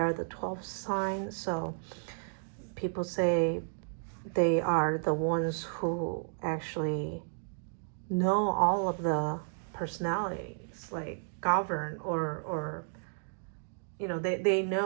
the 12th sign. So people say they are the ones who actually know all of the personalities, like govern, or you know, they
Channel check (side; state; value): left; silent; digital silence